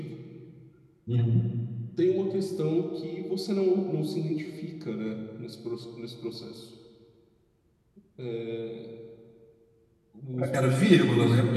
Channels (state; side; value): identical; both; correlation 1.00